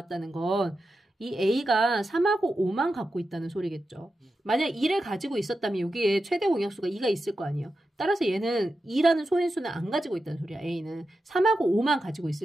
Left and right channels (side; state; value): both; normal; correlation 0.90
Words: 건 이 A가 3하고 5만 갖고 있다는 소리겠죠. 만약 2를 가지고 있었다면 여기에 최대 공약수가 2가 있을 거 아니에요. 따라서 얘는 2라는 소인수는 안 가지고 있다는 소리야. A는 3하고 5만 가지고